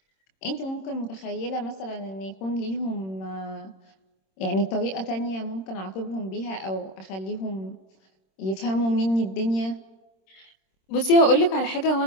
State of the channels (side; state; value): right; late; 26 ms